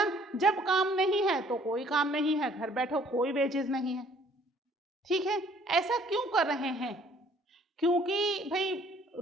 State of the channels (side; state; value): both; normal; correlation 0.59